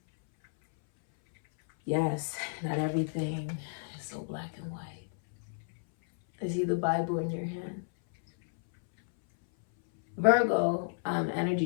Yes, not everything is so black and white. I see the Bible in your hand. Virgo energy,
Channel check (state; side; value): silent; right; 57 dB below the other